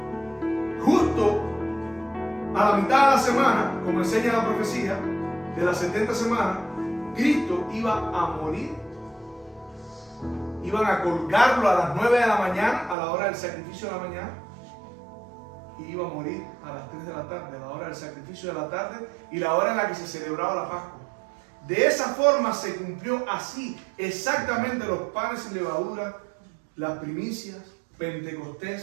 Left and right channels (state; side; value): drops out; left; at 13.0 s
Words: justo a la mitad de la semana, como enseña la profecía, de las 70 semanas, Cristo iba a morir. Iban a colgarlo a las 9 de la mañana, a la hora del sacrificio de la mañana, y iba a morir a las 3 de la tarde, a la hora del sacrificio de la tarde y la hora en la que se celebraba la Pascua. De esa forma se cumplió así exactamente los panes sin levadura, las primicias,